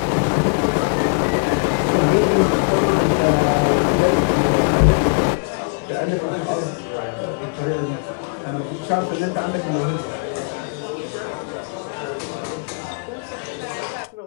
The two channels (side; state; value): right; quieter; 37.9 dB